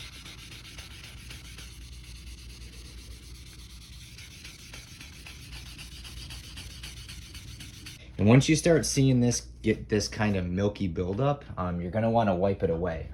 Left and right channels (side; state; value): both; identical; correlation 1.00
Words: And once you start seeing this get this kind of milky buildup, you're gonna want to wipe it away,